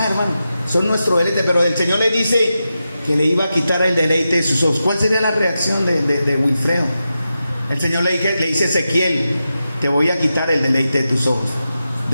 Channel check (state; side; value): inverted; both; correlation -0.90